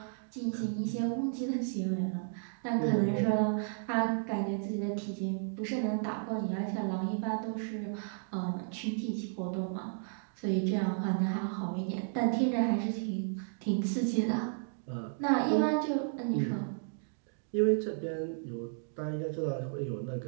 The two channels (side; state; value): left; silent; digital silence